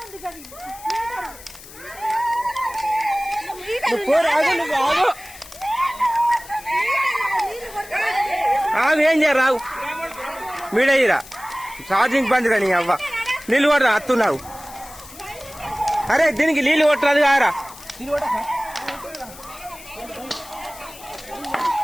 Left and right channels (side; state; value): left; noise; hiss, 18 dB below the sound